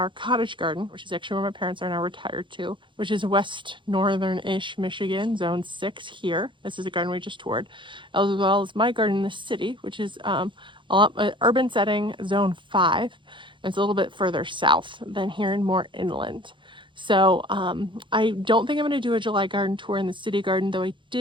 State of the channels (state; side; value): late; left; 0.24 ms